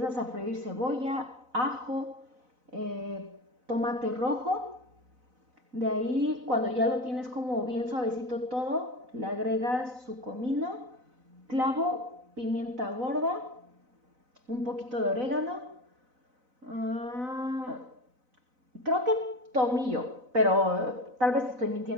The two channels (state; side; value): late; left; 4.0 ms